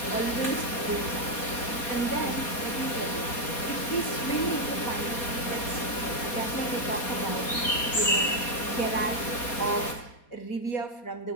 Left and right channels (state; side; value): late; right; 4.2 ms